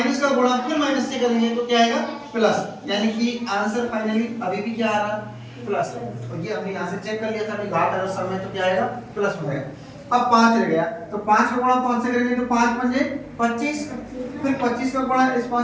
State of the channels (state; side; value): identical; both; correlation 1.00